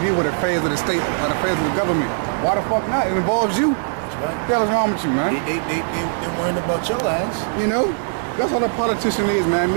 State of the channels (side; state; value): left; silent; 64 dB below the other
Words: with affairs of the state or affairs of the government. Why the fuck not? It involves you. That's right. What the hell is wrong with you, man? They worrying about your ass. You know? That's what a politician is, man. It